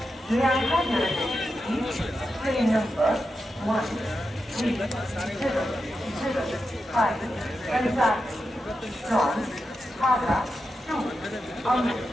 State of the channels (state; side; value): normal; both; correlation 0.89